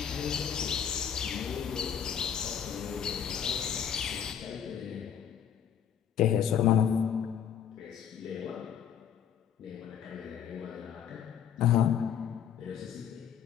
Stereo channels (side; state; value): right; quieter; 8.5 dB